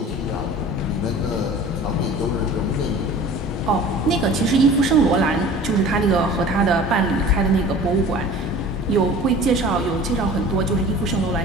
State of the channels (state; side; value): normal; both; correlation 0.42